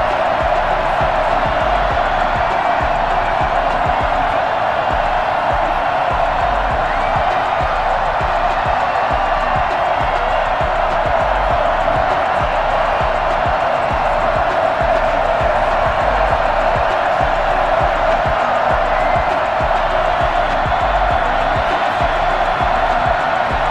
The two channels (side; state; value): both; identical; correlation 1.00